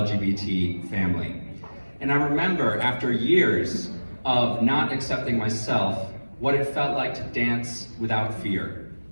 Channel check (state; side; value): inverted; both; correlation -1.00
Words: family. And I remember after years of not accepting myself, what it felt like to dance without fear.